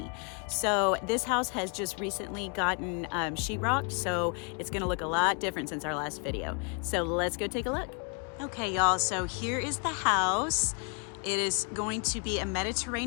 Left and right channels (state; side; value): quieter; right; 37.6 dB